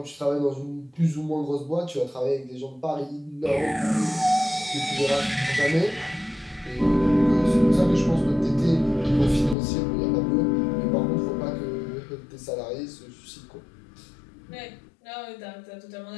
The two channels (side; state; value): right; drops out; at 9.6 s